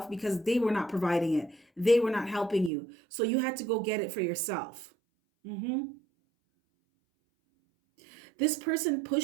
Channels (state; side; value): drops out; left; at 2.7 s